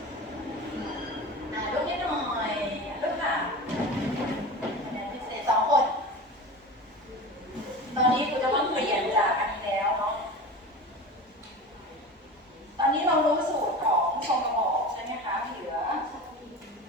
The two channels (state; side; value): normal; both; correlation 0.31